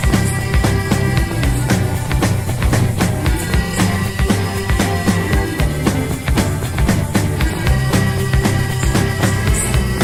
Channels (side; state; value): both; identical; correlation 1.00